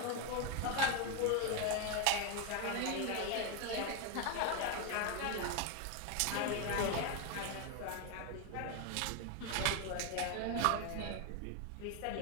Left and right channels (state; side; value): different; both; correlation 0.01